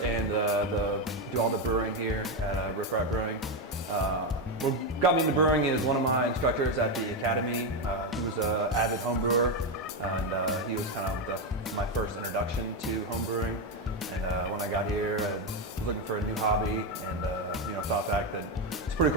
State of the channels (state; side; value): normal; both; correlation 0.09